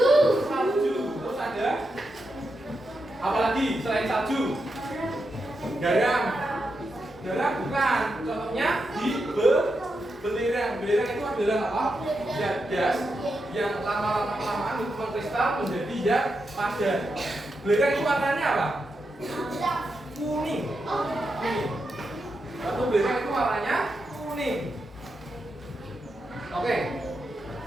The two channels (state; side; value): normal; both; correlation 0.86